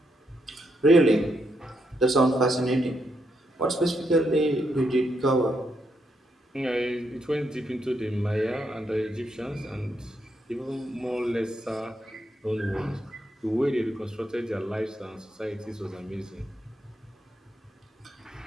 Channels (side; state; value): both; normal; correlation 0.79